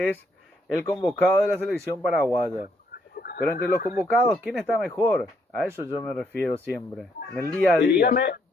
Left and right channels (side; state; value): both; normal; correlation 0.72